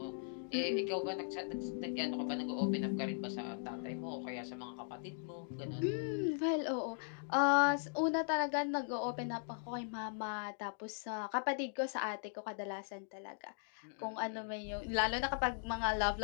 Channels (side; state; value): right; silent; digital silence